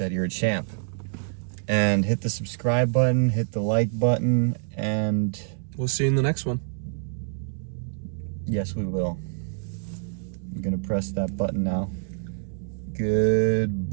you're a champ. And hit the subscribe button, hit the like button, and we'll see you in the next one. Yes, we will. I'm gonna press that button now.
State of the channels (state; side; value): silent; left; digital silence